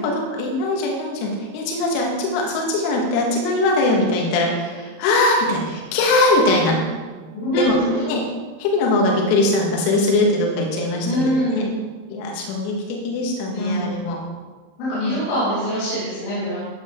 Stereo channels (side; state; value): right; late; 31 ms